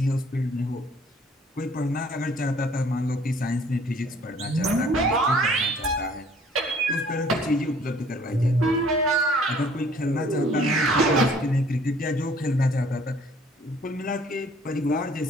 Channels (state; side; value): normal; both; correlation 0.57